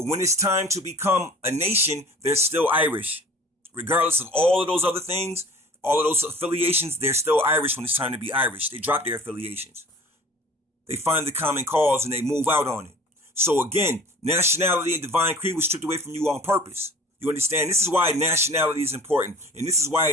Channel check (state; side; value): normal; both; correlation 0.45